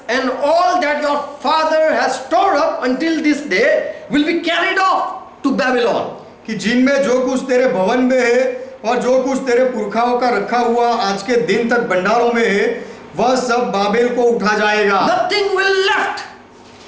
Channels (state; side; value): identical; both; correlation 1.00